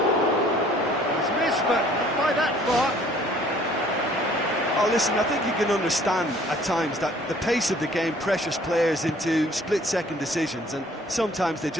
He's missed, but that far. Oh, listen, I think you can understand at times that the pace of the game pressures players into split-second decisions, and sometimes they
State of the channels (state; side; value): normal; both; correlation 0.56